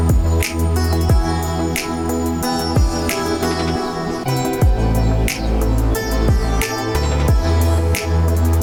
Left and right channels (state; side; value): identical; both; correlation 1.00